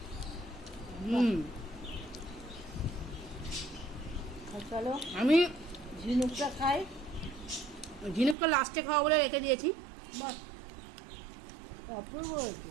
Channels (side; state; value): left; drops out; at 8.3 s